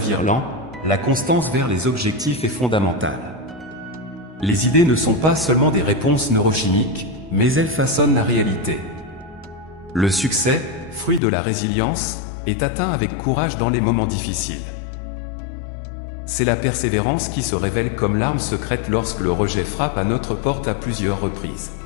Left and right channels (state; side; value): drops out; right; at 11.2 s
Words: lent, la constance vers les objectifs est fondamentale. Les idées ne sont pas seulement des réponses neurochimiques, mais elles façonnent la réalité. Le succès, fruit de la résilience, est atteint avec courage dans les moments difficiles. C'est la persévérance qui se révèle comme l'arme secrète lorsque le rejet frappe à notre porte à plusieurs reprises.